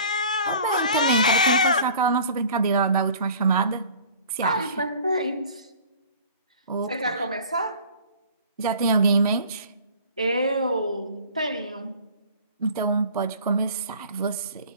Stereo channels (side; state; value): both; inverted; correlation -0.46